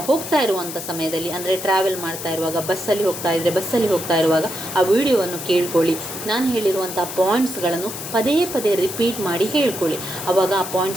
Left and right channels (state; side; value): noise; left; hiss, 8 dB below the sound